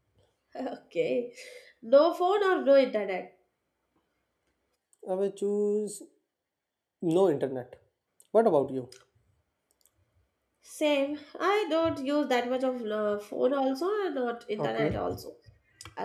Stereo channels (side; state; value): both; identical; correlation 1.00